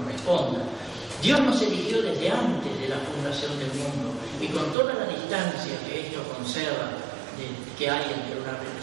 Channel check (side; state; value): left; drops out; at 4.8 s